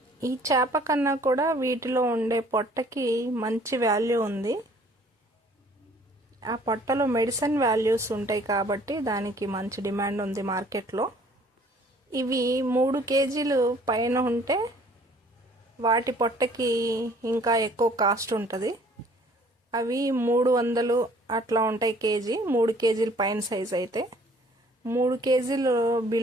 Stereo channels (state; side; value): normal; both; correlation 0.56